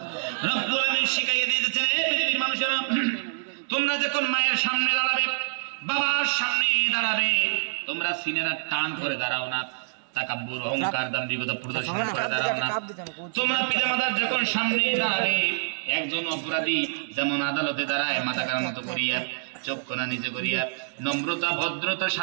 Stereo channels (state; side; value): silent; left; 61 dB below the other